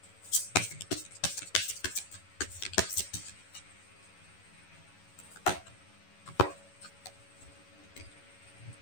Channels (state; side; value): late; right; 11 ms